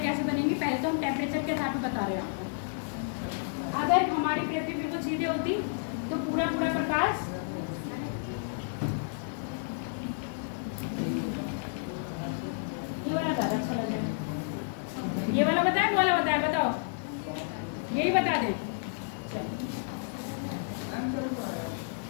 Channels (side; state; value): right; silent; 57 dB below the other